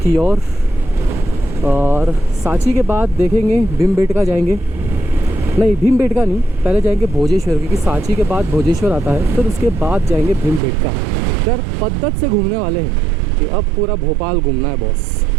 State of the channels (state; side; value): drops out; left; at 10.6 s